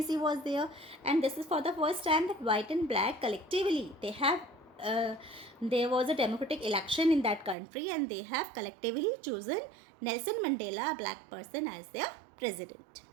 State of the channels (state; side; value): drops out; left; at 7.6 s